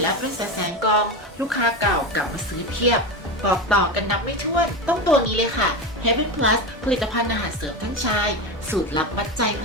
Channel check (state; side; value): normal; both; correlation 0.20